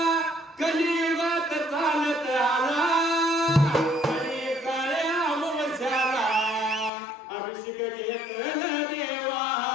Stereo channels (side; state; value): right; drops out; at 6.9 s